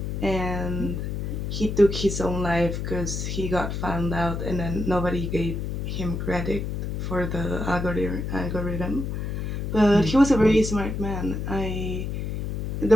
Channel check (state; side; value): noise; left; hum, 3 dB below the sound